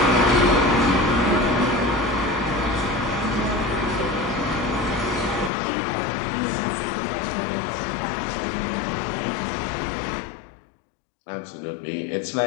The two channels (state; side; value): drops out; right; at 5.5 s